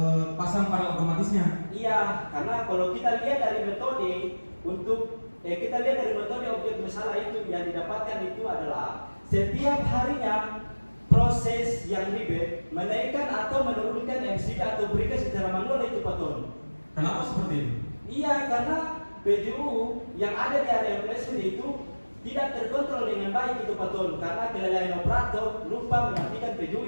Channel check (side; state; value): both; inverted; correlation -1.00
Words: pasang panel otomatisnya. Iya, karena kalau kita lihat dari metode objek masalah itu yang didapatkan itu adalah setiap harinya proses yang ribet menaikkan atau menurunkan MCD atau berikan secara manual itu paton. Kenapa seperti itu? Iya, karena PJU yang ada di area placement itu tidak terkontrol dengan baik itu paton karena kelalaian operator lupa mematikan PJU